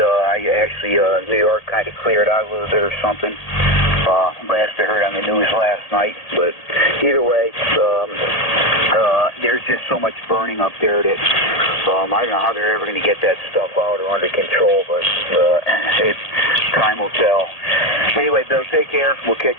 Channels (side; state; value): right; late; 1.8 ms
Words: New York kind of cleared out a little bit or something. Last I heard on the news last night. But either way, there's just so much burning up there that I don't know how they're ever going to get that stuff out or under control, but time will tell. Anyway, Bill, take care. We'll